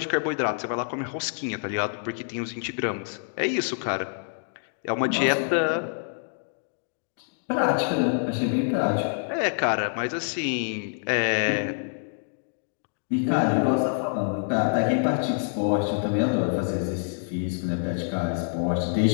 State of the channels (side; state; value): right; silent; digital silence